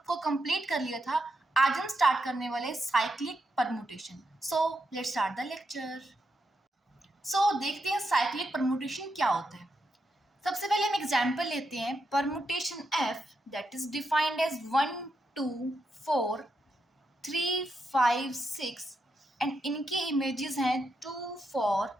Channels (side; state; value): both; normal; correlation 0.83